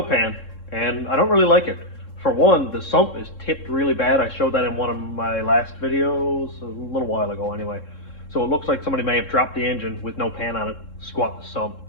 pan and I don't really like it. For one, the sump is tipped really bad. I showed that in one of my last videos, a little while ago anyway. So it looks like somebody may have dropped the engine with no pan on it, squat the sump,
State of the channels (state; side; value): late; right; 3.7 ms